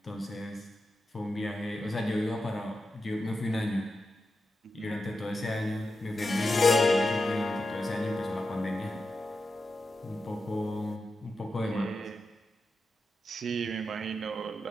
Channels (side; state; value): both; normal; correlation 0.89